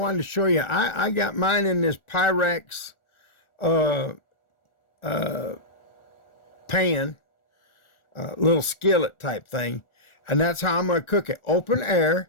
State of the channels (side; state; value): right; late; 1.4 ms